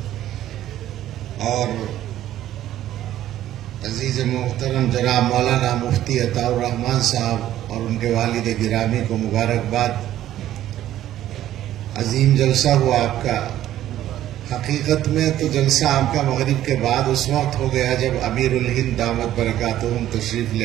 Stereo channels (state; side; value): quieter; left; 12.8 dB